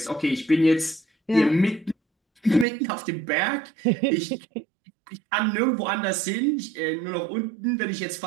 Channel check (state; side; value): drops out; left; at 2.7 s